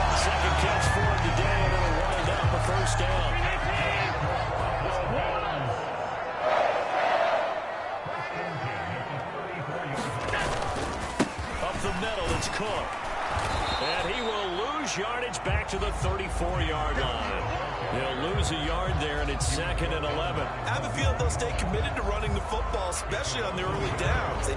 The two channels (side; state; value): both; identical; correlation 1.00